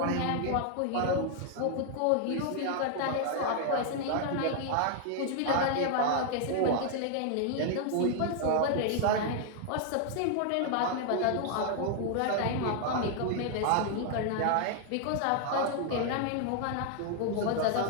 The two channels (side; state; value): both; different; correlation 0.00